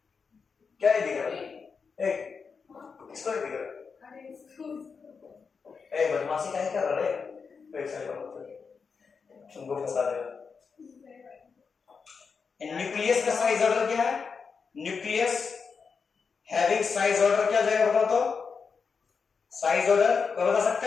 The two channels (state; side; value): quieter; right; 5.5 dB